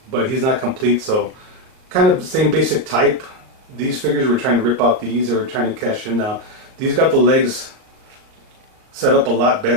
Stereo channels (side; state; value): left; late; 38 ms